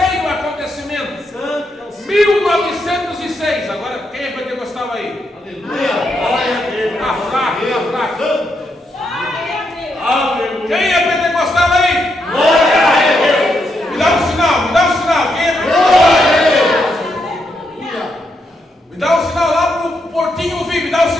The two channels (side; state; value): both; normal; correlation 0.80